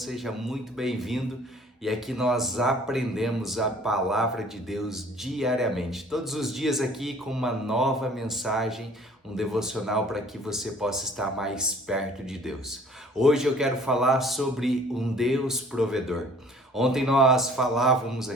muito bem-vindo. E aqui nós aprendemos a palavra de Deus diariamente, todos os dias aqui com uma nova mensagem, um devocional para que você possa estar mais perto de Deus. Hoje eu quero falar sobre um Deus provedor. Ontem nós falávamos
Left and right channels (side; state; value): both; normal; correlation 0.53